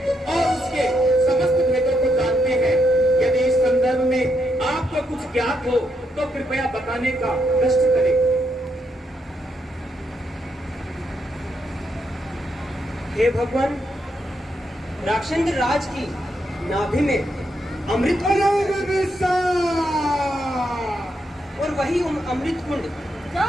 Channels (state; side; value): normal; both; correlation 0.79